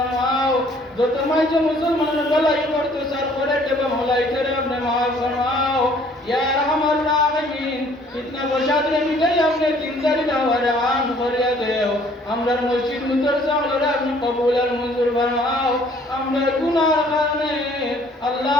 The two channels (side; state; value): both; normal; correlation 0.59